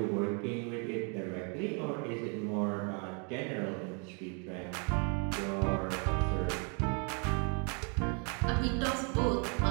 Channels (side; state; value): left; quieter; 37.1 dB